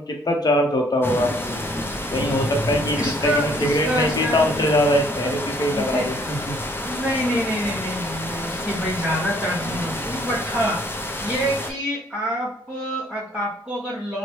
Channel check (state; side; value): normal; both; correlation 0.62